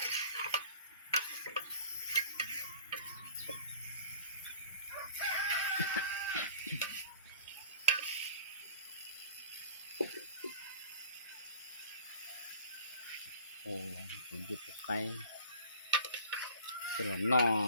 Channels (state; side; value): inverted; both; correlation -0.45